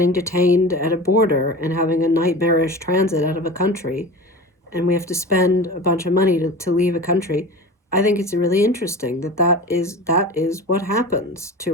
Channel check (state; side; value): normal; both; correlation 0.33